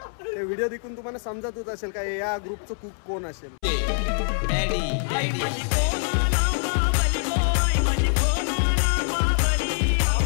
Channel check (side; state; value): right; silent; 62 dB below the other